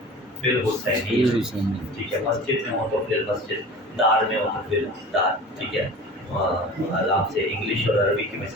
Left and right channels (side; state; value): both; normal; correlation 0.38